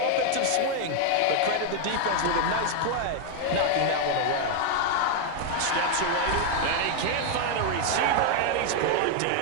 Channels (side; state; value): both; different; correlation 0.00